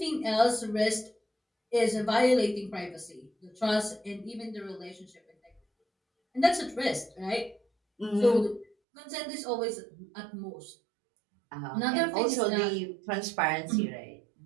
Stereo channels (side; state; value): left; drops out; at 8.8 s